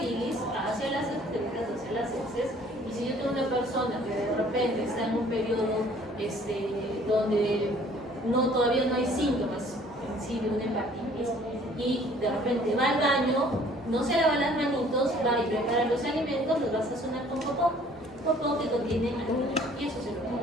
hacia las excretas, hacia las heces. Y si yo tengo una persona que de repente está en un periodo donde todavía no hay síntomas en sí de una hepatitis y de repente va al baño, no se lava las manitos, va y prepara los alimentos, los va a sazonar con popó que contiene alimentos y eso se lo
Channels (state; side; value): normal; both; correlation 0.56